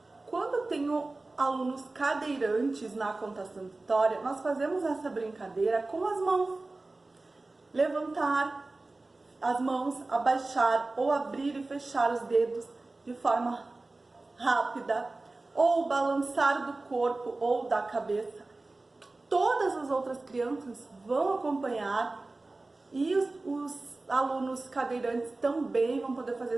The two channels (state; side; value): quieter; left; 3.2 dB